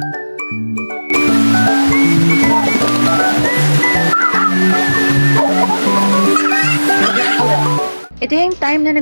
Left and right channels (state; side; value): inverted; both; correlation -1.00